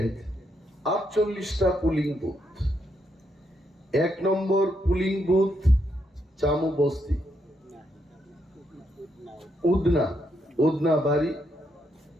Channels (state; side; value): normal; both; correlation 0.78